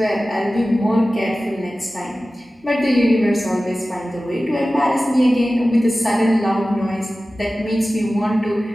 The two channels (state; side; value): normal; both; correlation 0.96